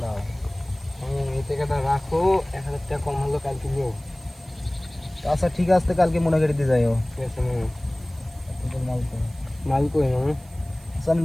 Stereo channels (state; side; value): noise; right; hiss, 26 dB below the sound